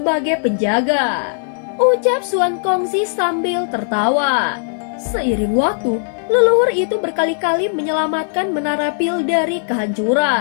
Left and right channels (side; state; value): right; silent; digital silence